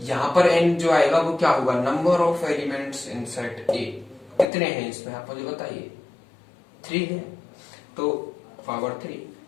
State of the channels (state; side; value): drops out; right; at 4.5 s